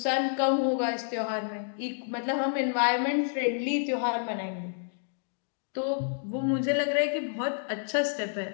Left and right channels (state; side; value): silent; right; digital silence